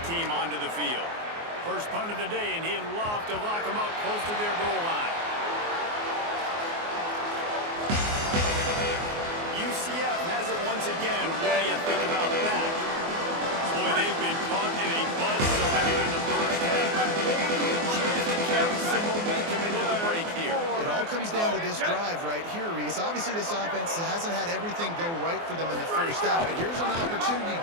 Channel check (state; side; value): late; left; 24 ms